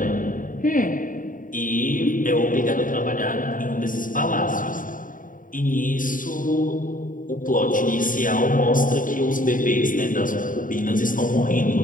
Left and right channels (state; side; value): late; right; 0.39 ms